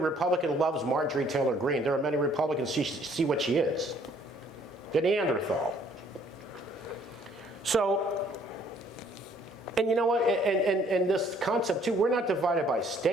loves Marjorie Taylor Greene. There are many Republicans who see what she is. The Neanderthal. So, and you know what, and this concept too, we're not divided by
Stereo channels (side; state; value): both; normal; correlation 0.61